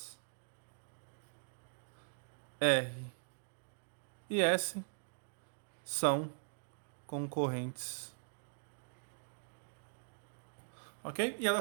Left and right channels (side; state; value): left; silent; digital silence